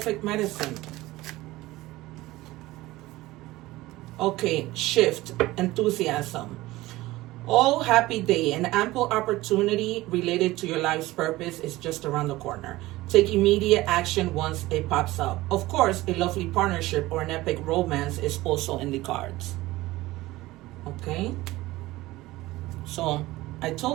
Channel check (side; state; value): left; quieter; 18.3 dB